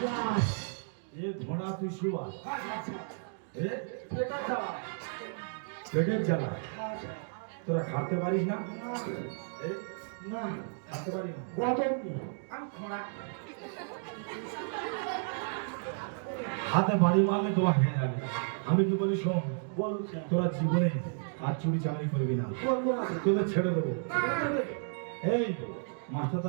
এ ঘোড়া তুই শুয়া হ্যাঁ স্যার এ এটা যাবা পেটের জ্বালা হ্যাঁ স্যার তোরা খাতে পারিস না এ না খাতে পারিস না গতম আমি খোঁড়া হাতে বাড়ি মারলে তোরা হেঁটে যাবে আমি কি বলি শোনো বলুন স্যার তোরা জীবনে আর চুরি চাকরি করবি না করবো না স্যার তোদের ছেড়ে দেবো না দেবে এই মাস্টারটা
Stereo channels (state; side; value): silent; left; digital silence